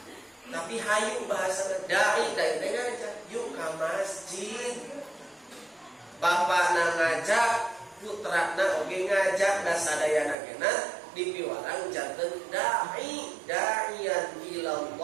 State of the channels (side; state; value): left; drops out; at 10.4 s